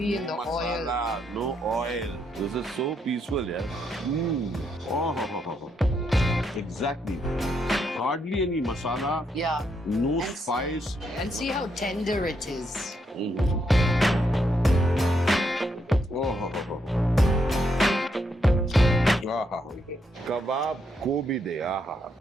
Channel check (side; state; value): both; normal; correlation 0.77